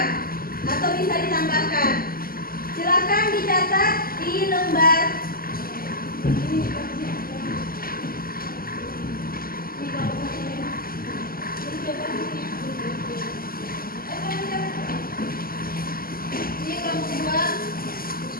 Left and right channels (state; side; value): late; right; 0.42 ms